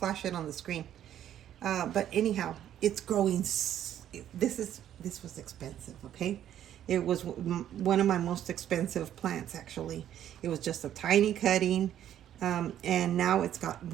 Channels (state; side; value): quieter; left; 11.0 dB